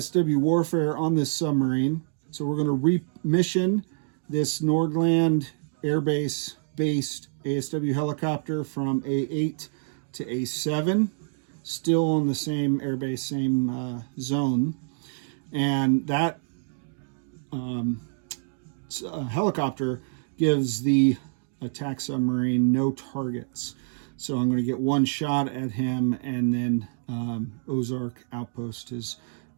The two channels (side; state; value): left; silent; digital silence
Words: warfare on this submarine. So we're going to remission this Nordland Air Base based ASW helicopter from A8 to A7, still on the same airbase, same zone. And that helicopter gives the attack submarine no targets. So I'm going to get 1 shot at him, and then Ozark Outpost has